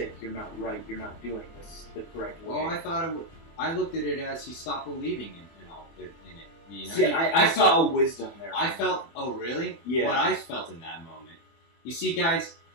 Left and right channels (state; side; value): late; right; 24 ms